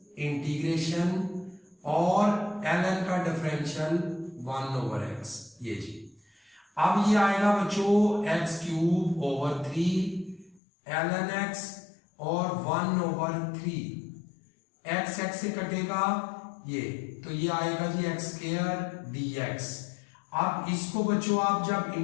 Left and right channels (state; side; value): drops out; right; at 10.6 s